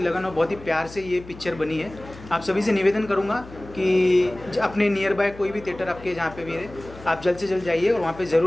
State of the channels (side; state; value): left; noise; hum, 17 dB below the sound